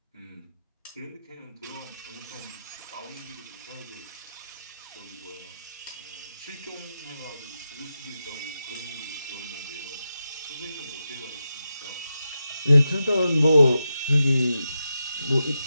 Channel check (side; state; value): both; inverted; correlation -0.89